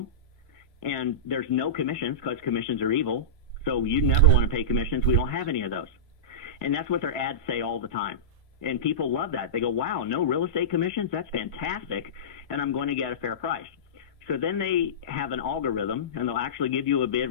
and there's no commissions, because commissions are evil, so you never want to pay commissions. We don't have any of those. And that's what their ads say all the time. And people love that. They go, wow, no real estate commissions? That's fantastic, and I'm going to get a fair price. So then they have an algorithm, and they'll actually give you a bid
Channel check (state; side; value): normal; both; correlation -0.17